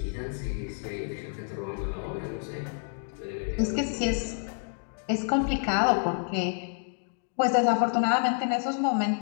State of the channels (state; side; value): silent; right; 59 dB below the other